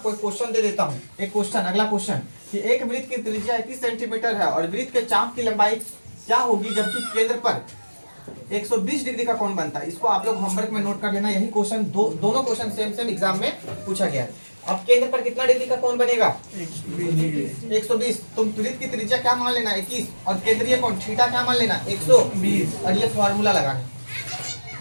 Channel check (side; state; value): both; inverted; correlation -1.00